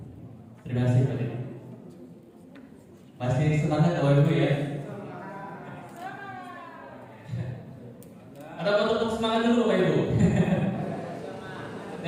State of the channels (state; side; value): identical; both; correlation 1.00